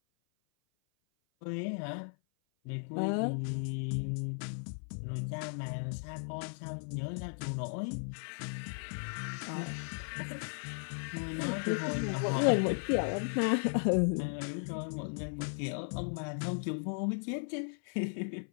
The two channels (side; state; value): right; silent; 54 dB below the other